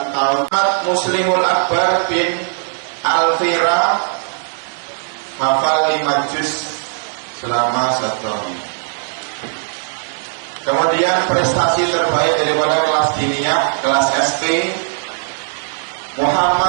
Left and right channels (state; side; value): silent; left; digital silence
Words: tahun. Muslimul Akbar bin Alfira hafal 5 juz selama 1 tahun. Kemudian prestasi terbaik daripada kelas diniyah, kelas SP,